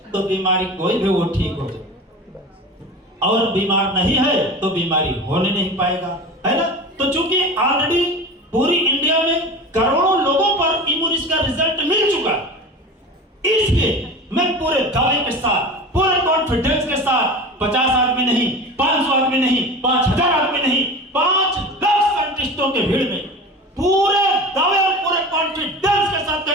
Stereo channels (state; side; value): normal; both; correlation 0.33